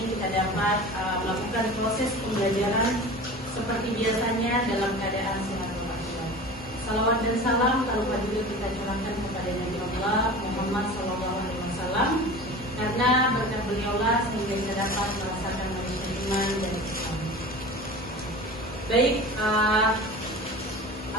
kita dapat melakukan proses pembelajaran seperti biasanya dalam keadaan sehat walafiat. Salawat dan salam tanpa juga kita curahkan kepada Nabi Allah Muhammad sallallahu alaihi wasallam, karena berkat beliaulah sehingga kita dapat merasakan manisnya iman dan Islam. Baik,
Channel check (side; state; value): both; normal; correlation 0.36